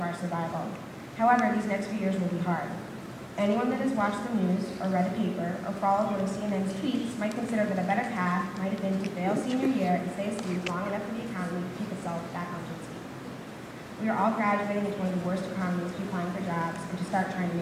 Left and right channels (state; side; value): identical; both; correlation 1.00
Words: our survival. However, these next few years will be hard. Anyone that has watched the news, or read a paper, or followed one of CNN's tweets might consider that a better path might have been to fail senior year and stay asleep long enough for the economy to keep itself back on its feet. We are all graduating into one of the worst economies to applying for jobs and to start trying to